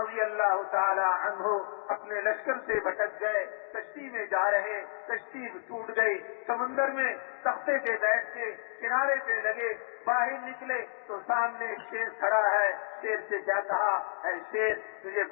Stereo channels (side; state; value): right; silent; digital silence